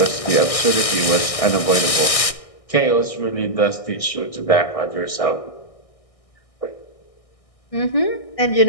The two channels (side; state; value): right; late; 1.6 ms